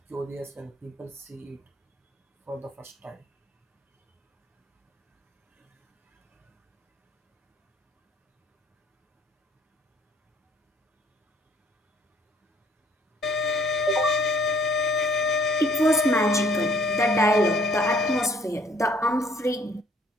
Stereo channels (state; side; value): normal; both; correlation 0.60